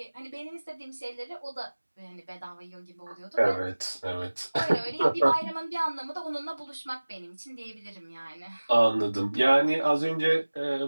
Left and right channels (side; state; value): both; inverted; correlation -1.00